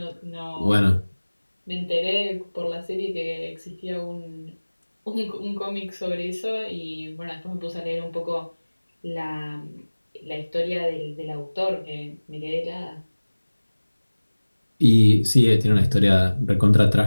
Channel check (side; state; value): both; inverted; correlation -1.00